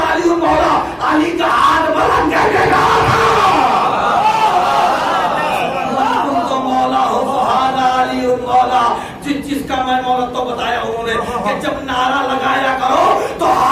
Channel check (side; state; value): both; identical; correlation 1.00